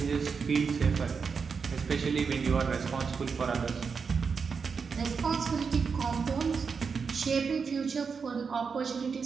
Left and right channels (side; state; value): left; quieter; 5.6 dB